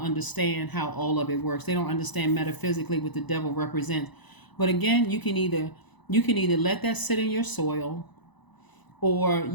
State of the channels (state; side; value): late; right; 1.0 ms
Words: understand how all of it works. They don't understand metaphysically what the devil represents. But again, you can either let that sit in your soil, or